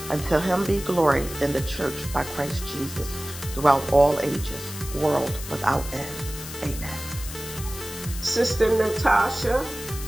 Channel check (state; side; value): noise; left; hiss, 11 dB below the sound